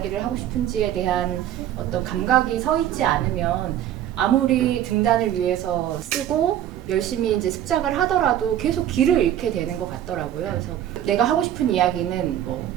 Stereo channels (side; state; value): left; quieter; 11.4 dB